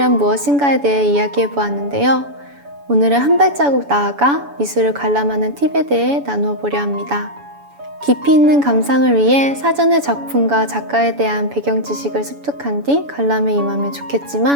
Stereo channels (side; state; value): left; late; 7.0 ms